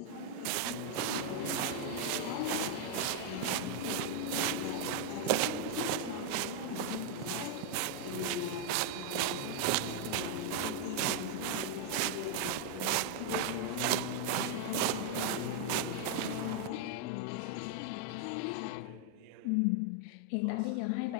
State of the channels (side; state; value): both; different; correlation 0.00